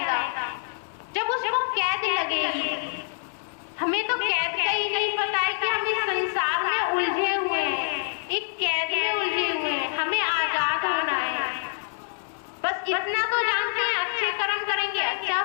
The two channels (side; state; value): right; silent; 58 dB below the other